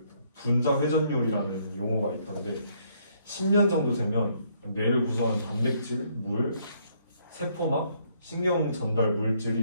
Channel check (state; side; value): inverted; both; correlation -0.69